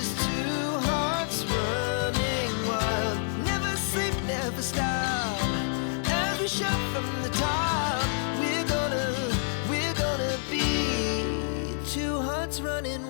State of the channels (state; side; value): silent; right; digital silence